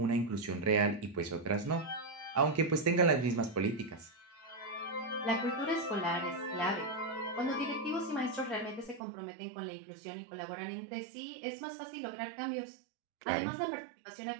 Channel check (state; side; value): drops out; left; at 9.0 s